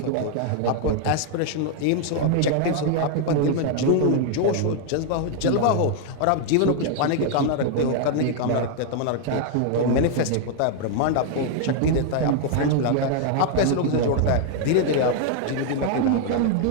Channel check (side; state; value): both; different; correlation 0.00